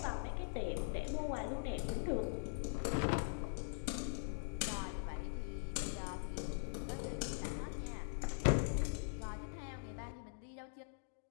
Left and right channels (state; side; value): silent; right; digital silence